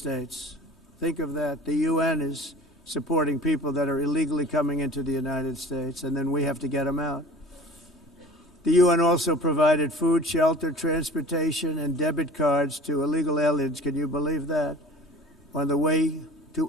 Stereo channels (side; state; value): both; normal; correlation 0.43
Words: Think of that. The UN is supporting people that are illegally coming into the United States, and then we have to get them out. The UN also provided food, shelter, transportation, and debit cards to illegal aliens. Can you believe that? On the way to